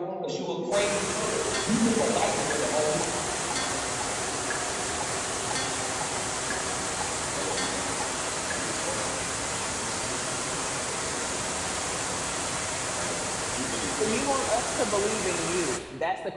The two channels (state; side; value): identical; both; correlation 1.00